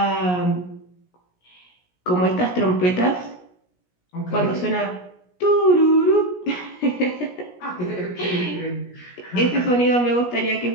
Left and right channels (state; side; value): late; right; 17 ms